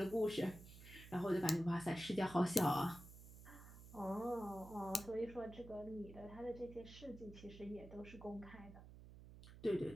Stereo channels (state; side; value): noise; right; hum, 15 dB below the sound